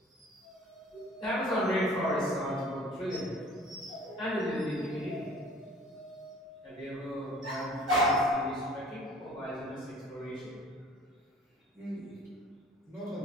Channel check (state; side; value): normal; both; correlation 0.50